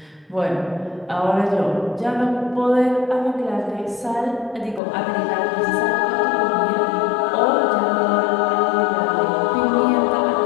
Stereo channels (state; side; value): drops out; right; at 4.8 s